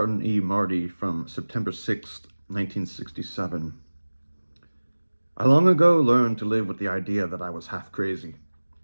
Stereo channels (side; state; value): both; inverted; correlation -1.00